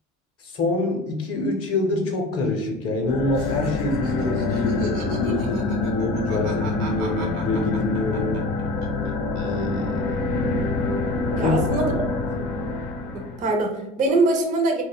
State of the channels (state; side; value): normal; both; correlation 0.38